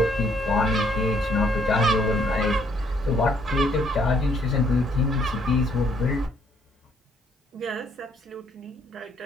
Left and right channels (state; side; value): normal; both; correlation 0.67